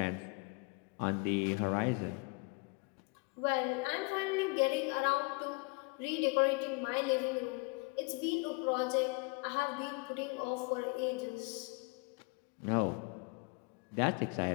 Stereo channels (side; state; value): right; quieter; 30.3 dB